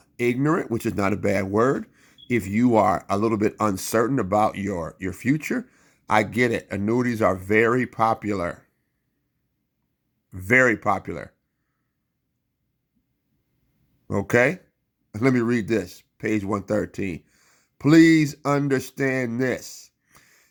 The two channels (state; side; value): identical; both; correlation 1.00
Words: ignorant, which is not a bad word, if you are a little bit uncertain about your future, I get it. Annuities are very popular. Very popular. Okay? Let me read this. Page 113. Please understand this.